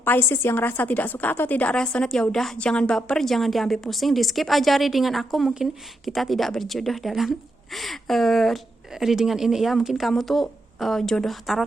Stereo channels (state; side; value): normal; both; correlation 0.82